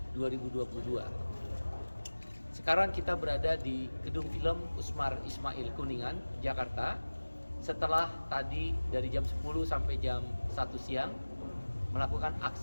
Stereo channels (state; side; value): inverted; both; correlation -1.00